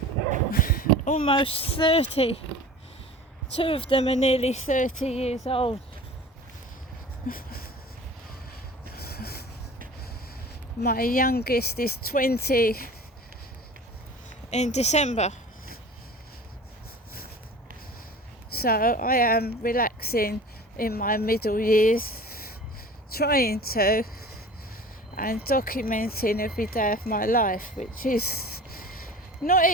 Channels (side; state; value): both; normal; correlation 0.40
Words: almost 30. Two of them are nearly 30 years old. My youngest is 20 in December. So I am relaxing in my middle years, trying to, and documenting every day of my life, which is not